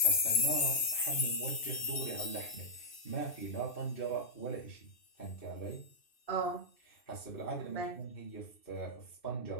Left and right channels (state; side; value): late; right; 2.6 ms